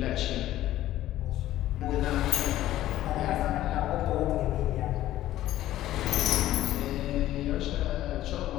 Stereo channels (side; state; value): right; quieter; 14.0 dB